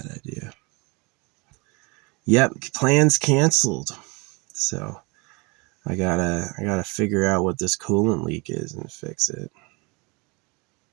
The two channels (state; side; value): quieter; left; 28.3 dB